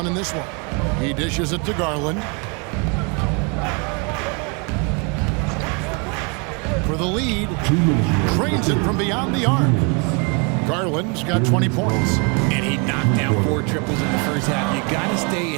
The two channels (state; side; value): quieter; left; 32.8 dB